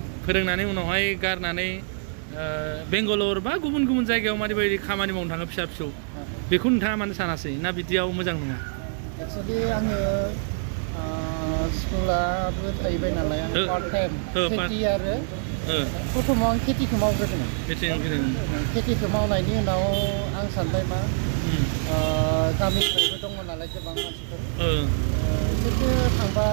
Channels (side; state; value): left; silent; 62 dB below the other